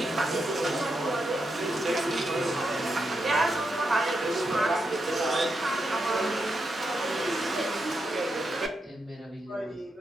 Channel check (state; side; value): normal; both; correlation 0.84